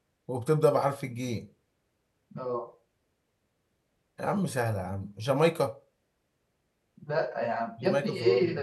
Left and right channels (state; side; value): identical; both; correlation 1.00